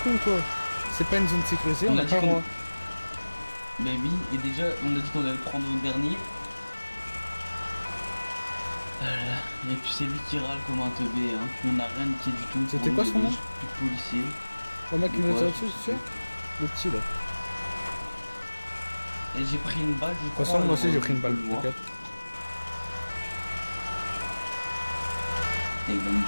con, toi. C'est pas une zone sécurisée, on On a a pas dit le droit. Mais oui, et déjà, on a dit qu'on allait prendre le dernier. Et puis c'est lui qui râle comme un teubé, hein. On n'a rien niqué du tout. C'était Pour quoi nous, son nom? plus de policiers. Le mec qui nous a Ouais, tiré dessus, tu sais? Le petit, là. Et j'ai pris une balle, je De crois. toute façon, moi aussi j'ai pris une balle, on le voit. t'inquiète. Et il va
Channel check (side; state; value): both; inverted; correlation -1.00